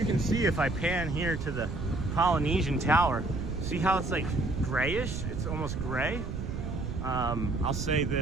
can see if I pan here to the Polynesian Tower, see how it's like grayish? It's almost gray. I'll say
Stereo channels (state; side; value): noise; right; rumble, 5 dB below the sound